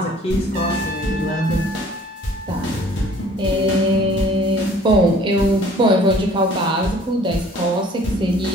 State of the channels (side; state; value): both; normal; correlation 0.53